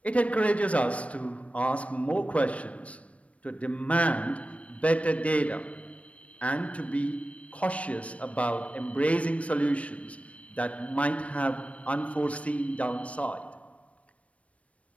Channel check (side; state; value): right; late; 0.064 ms